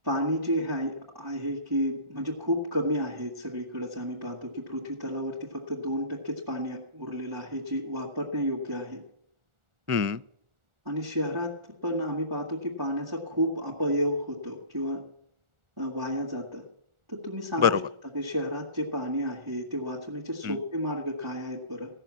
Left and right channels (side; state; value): left; late; 1.4 ms